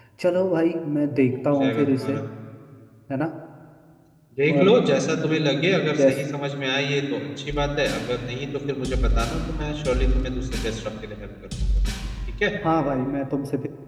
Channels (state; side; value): identical; both; correlation 1.00